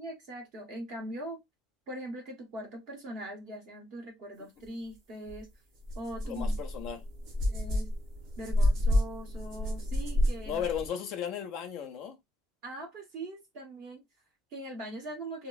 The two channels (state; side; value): normal; both; correlation 0.79